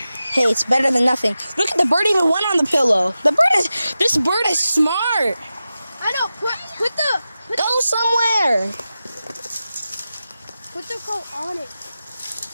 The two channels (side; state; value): both; inverted; correlation -0.93